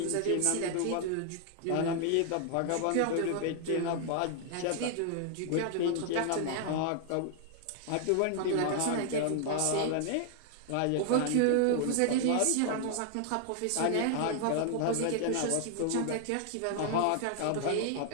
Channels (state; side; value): different; both; correlation 0.00